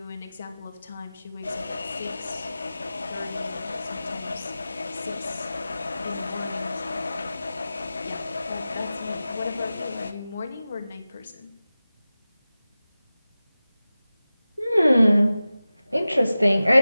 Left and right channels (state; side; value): inverted; both; correlation -0.95